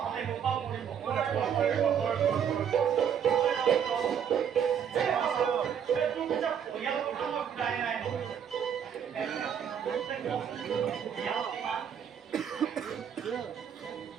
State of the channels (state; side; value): quieter; left; 8.2 dB